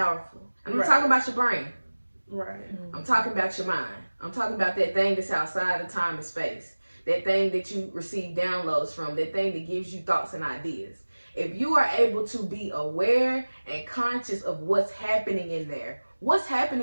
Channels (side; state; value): both; inverted; correlation -1.00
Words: And I'm talking about your brain. Right. I'm talking about your mind. I'm talking about that thing that's outside of time and space. That thing that you receive downloads from. That thing that gives you thoughts and ideas. If you are able to be aware and conscious of what's happening in there, what's